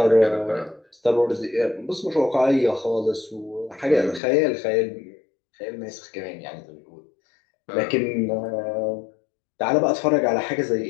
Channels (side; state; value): right; drops out; at 4.2 s